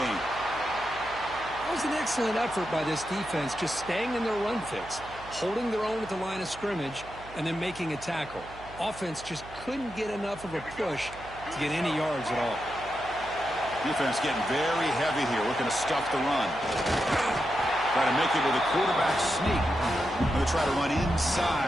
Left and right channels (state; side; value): noise; right; hum, 17 dB below the sound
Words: That was an excellent effort by this defense, just staying in their run fits, holding their own at the line of scrimmage, and then making a tackle. Offense just couldn't get enough of a push to get any yards at all. Defense getting very heavy here, looking to stuff the run. Try to make it with a quarterback sneak. Going to try to run